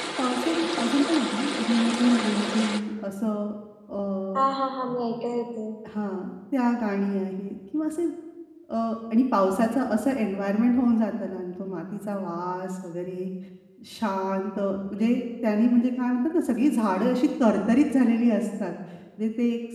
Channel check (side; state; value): both; identical; correlation 1.00